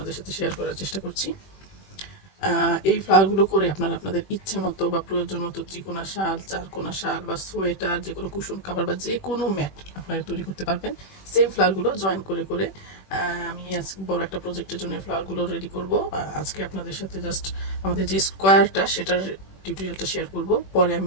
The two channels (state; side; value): late; right; 21 ms